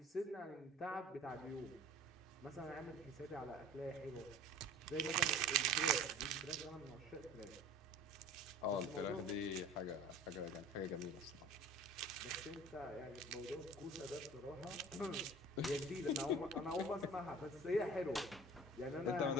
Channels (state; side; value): normal; both; correlation 0.43